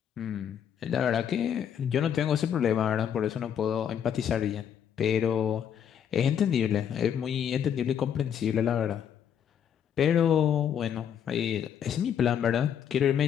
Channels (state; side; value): quieter; right; 8.7 dB